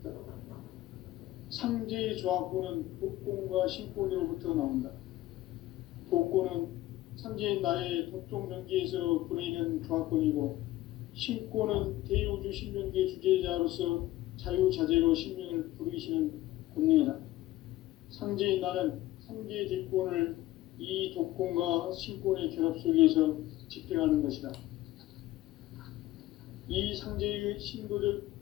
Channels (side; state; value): right; quieter; 16.1 dB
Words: 상제의 조합권은 복권과 신권으로부터 나온다. 복권은 상제인 나의 도통전기에서 보내는 조합권이고, 신권은 대우주 신명계 주제자로서 자유자재로 신명을 부르시는 권능이다. 상제인 나는 상제의 뒷권을 이 독권과 신권의 결합 속에서 집행하는 것이다. 이 상제의 신도적